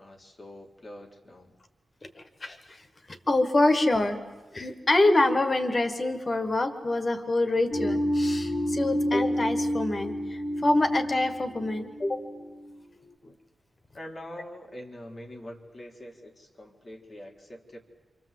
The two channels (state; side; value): normal; both; correlation 0.95